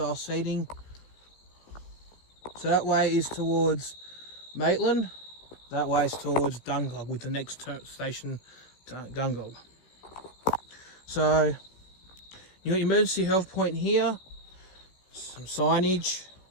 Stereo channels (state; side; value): late; right; 16 ms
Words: seating. So that way is towards Maitland. That way is towards Dungog, with the next station to Dungog. So you got your emergency health point here, some signage.